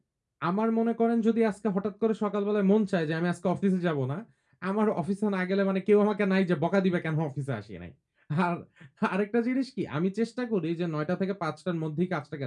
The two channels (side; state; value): both; identical; correlation 1.00